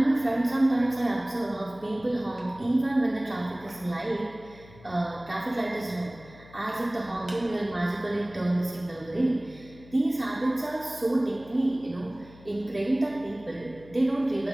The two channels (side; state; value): left; noise; hum, 21 dB below the sound